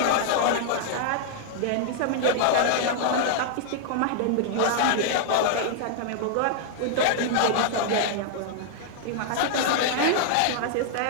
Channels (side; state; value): both; different; correlation -0.01